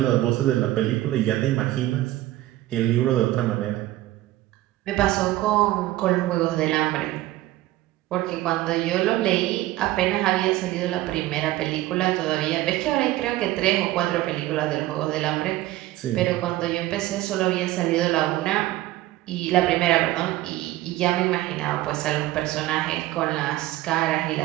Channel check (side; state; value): left; quieter; 16.1 dB